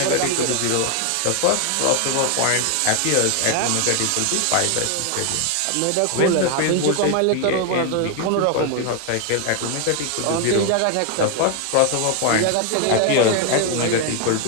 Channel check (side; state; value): both; different; correlation 0.01